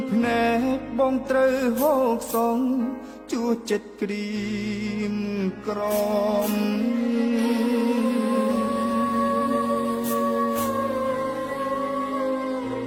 ភ្នែកបងត្រូវហូកសងជួចិត្តក្រៀមក្រំ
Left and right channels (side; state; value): both; identical; correlation 1.00